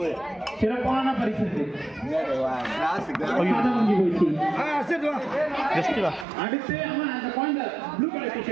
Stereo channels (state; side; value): drops out; left; at 6.2 s